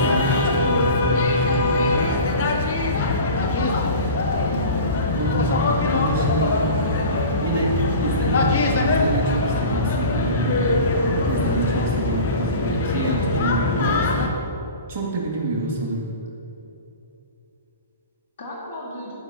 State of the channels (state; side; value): inverted; both; correlation -0.36